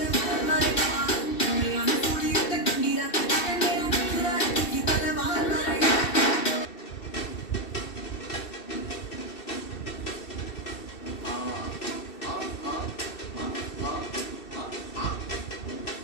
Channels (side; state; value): right; late; 2.7 ms